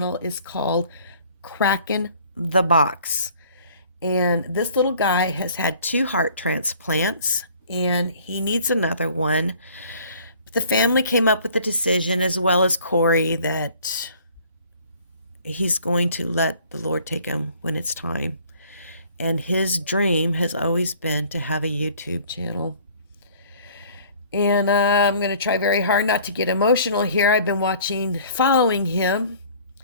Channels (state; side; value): inverted; both; correlation -0.53